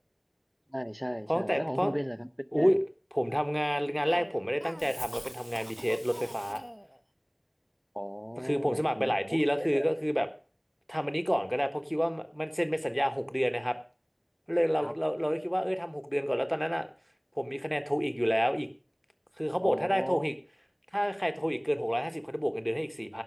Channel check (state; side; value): identical; both; correlation 1.00